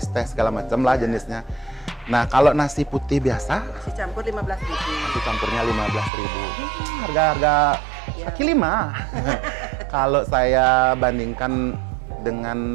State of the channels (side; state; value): left; drops out; at 6.1 s